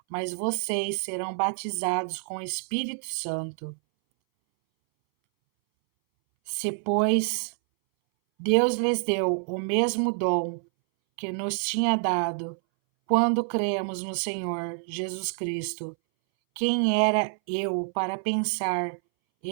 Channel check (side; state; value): left; silent; 60 dB below the other